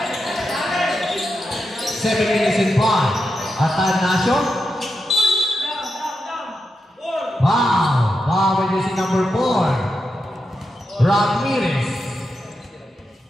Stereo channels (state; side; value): normal; both; correlation 0.87